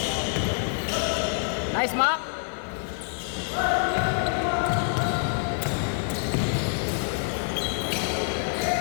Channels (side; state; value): right; silent; digital silence